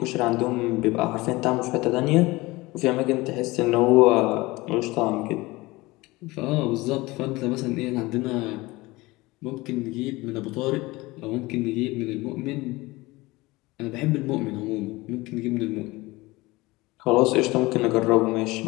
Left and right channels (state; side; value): quieter; right; 21.2 dB